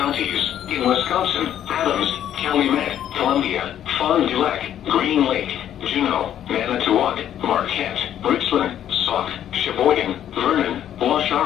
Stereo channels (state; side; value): quieter; right; 10.6 dB